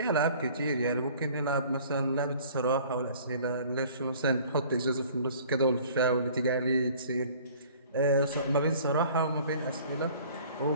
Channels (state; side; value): inverted; both; correlation -0.51